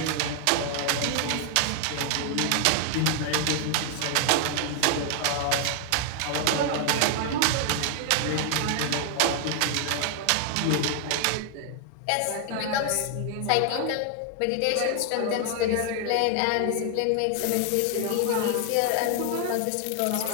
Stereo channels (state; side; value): different; both; correlation 0.00